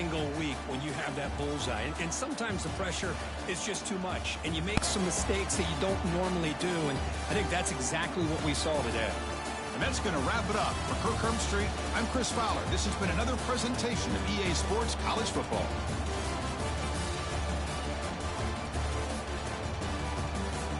week when you have that bullseye. And sometimes the pressure is just too much. And you make some mistakes that you don't normally do. And I think that's exactly what we saw today. And that's going to wrap it up. For Kirk Herbstreit, I'm Chris Fowler. This has been another presentation of EA Sports College Football.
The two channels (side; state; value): both; identical; correlation 1.00